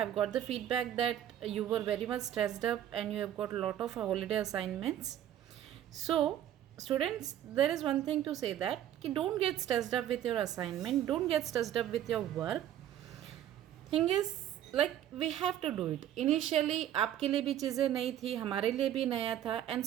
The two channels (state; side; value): quieter; left; 11.3 dB